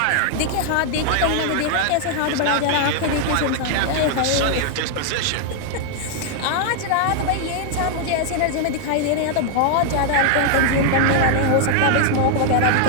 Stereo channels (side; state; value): both; different; correlation 0.00